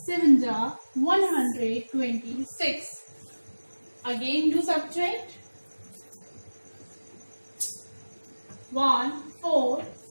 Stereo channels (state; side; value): inverted; both; correlation -1.00